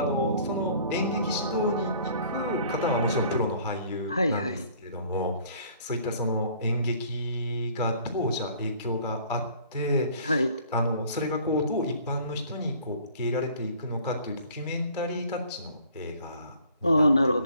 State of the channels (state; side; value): inverted; both; correlation -0.54